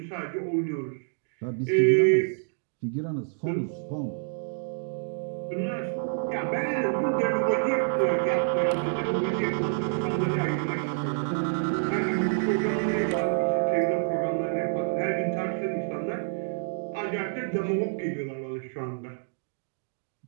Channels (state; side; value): silent; left; digital silence